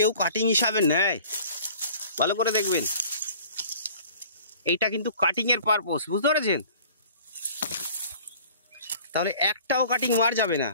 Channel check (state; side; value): inverted; both; correlation -0.48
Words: কাটিং হিসাবে নেয়, ভালো করে দেখবেন, এইটা কিন্তু কাটিং এর পারপোজ, বুঝতে পেরেছেন? তাহলে একটাও কাটিং মার যাবে না।